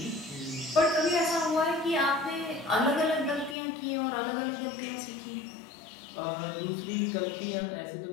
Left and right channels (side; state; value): right; drops out; at 3.6 s